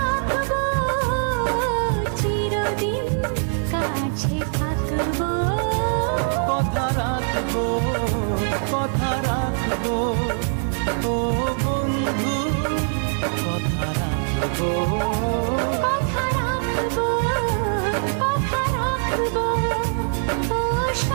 চিরদিন কাছে থাকবো। কথা রাখবো, কথা রাখবো, ও বন্ধু কথা রাখবো। কথা রাখবো, কথা রাখবো, ও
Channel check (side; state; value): left; silent; digital silence